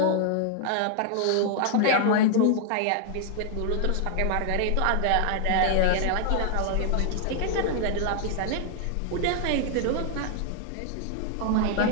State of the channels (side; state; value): both; different; correlation 0.00